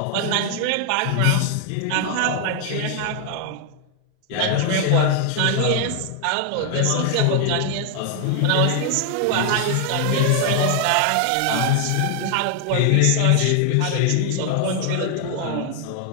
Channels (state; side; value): different; both; correlation 0.00